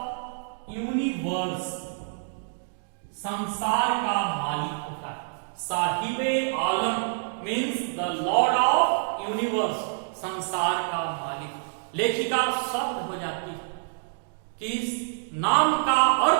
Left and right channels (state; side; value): silent; left; digital silence